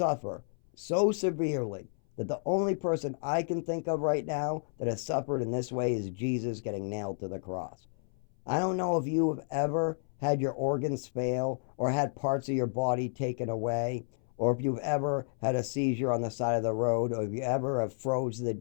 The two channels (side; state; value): right; silent; 57 dB below the other